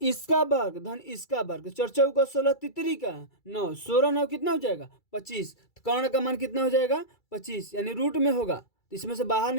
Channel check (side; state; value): right; late; 2.3 ms